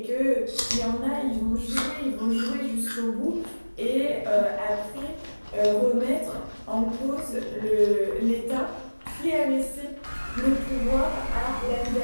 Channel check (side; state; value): both; inverted; correlation -1.00